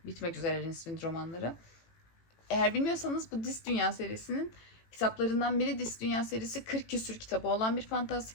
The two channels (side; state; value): right; late; 18 ms